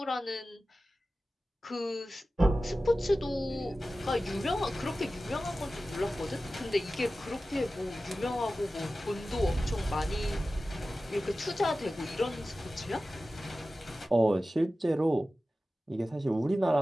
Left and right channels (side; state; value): both; normal; correlation 0.95